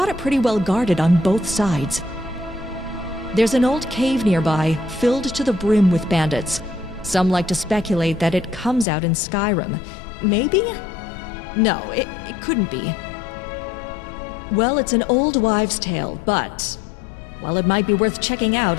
it pretty well guarded on both sides. There's an old cave nearby, filled to the brim with bandits. Some like to speculate that it comes out in Skyrim. Maybe? No, it couldn't be. Well, it's an old wives' tale, but... well, it might be worth checking out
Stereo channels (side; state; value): right; drops out; at 8.8 s